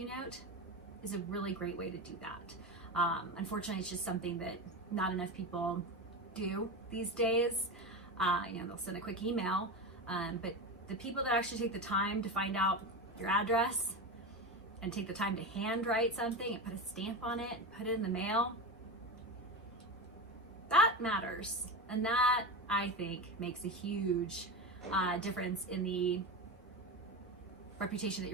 note is a really great way to do that. Unfortunately, it's just something that not enough people do these days. They'll send a quick email, but the people that actually take the time to find out your address and take the time to handwrite something and put a stamp on it and put it in the mail, that matters. And that, I think, makes a huge difference in the reputation that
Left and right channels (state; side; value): normal; both; correlation 0.21